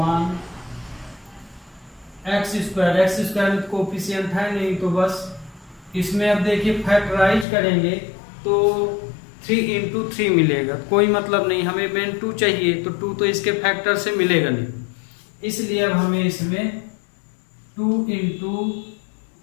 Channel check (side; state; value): right; drops out; at 7.5 s